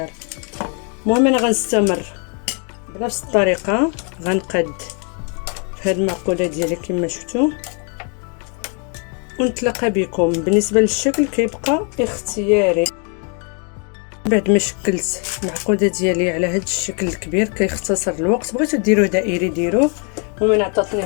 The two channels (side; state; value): right; quieter; 38.1 dB